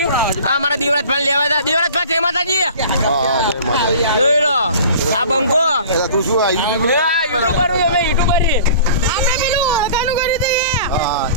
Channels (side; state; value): both; inverted; correlation -0.43